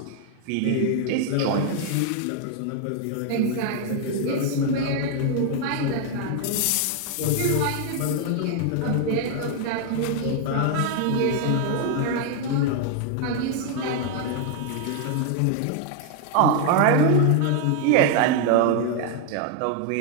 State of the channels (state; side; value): different; both; correlation 0.00